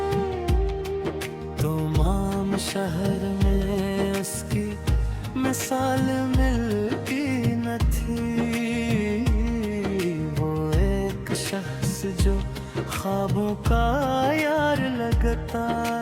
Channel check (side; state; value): both; identical; correlation 1.00